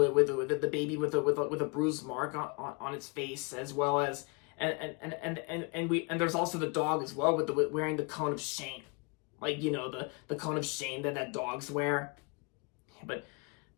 the baby with a bruised mark on its face, as well as and there's also the dog as well with wearing the cone of shame, like the cone of shame that dogs wear. But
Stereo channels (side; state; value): right; quieter; 31.3 dB